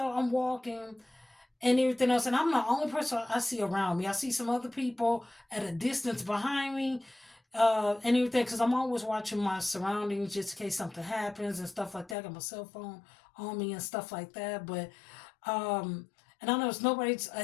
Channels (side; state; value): right; drops out; at 12.2 s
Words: I'm walking and everything else. And I'm the only person I see around me. I see some other people at a distance behind me and everything because I'm always watching my surroundings just in case something happens and stuff like that. I got my cell phone on me and stuff like that. But, and I know there's nobody's